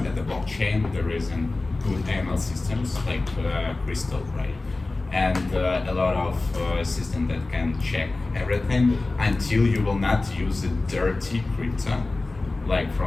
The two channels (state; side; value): quieter; right; 3.2 dB